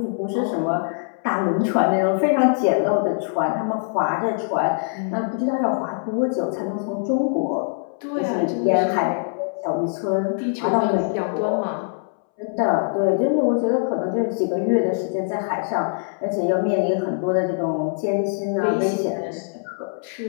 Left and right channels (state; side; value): silent; right; 64 dB below the other